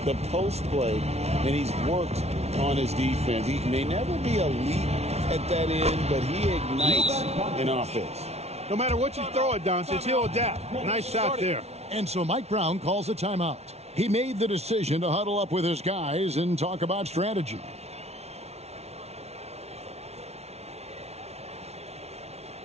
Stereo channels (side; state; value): left; late; 0.31 ms